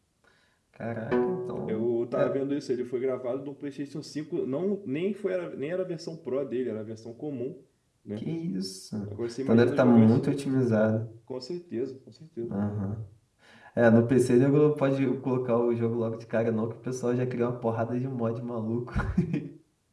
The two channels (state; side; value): identical; both; correlation 1.00